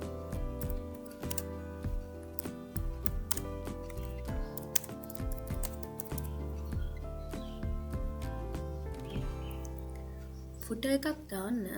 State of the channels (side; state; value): both; identical; correlation 1.00